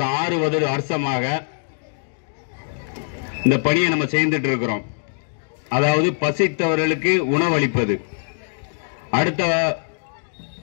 6 வருஷமாக இந்த பணியை நம்ம செய்துட்டு இருக்கிறோம். அதாவது பசித்தவர்களுக்கு உணவளிப்பது, அடுத்த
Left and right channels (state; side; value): silent; right; digital silence